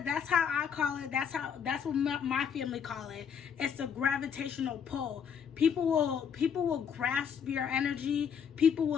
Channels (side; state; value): right; quieter; 7.4 dB